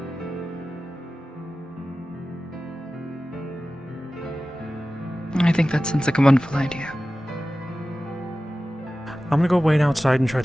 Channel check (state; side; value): normal; both; correlation 0.95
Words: I think that sounds like a wonderful idea. I'm gonna go wait outside and try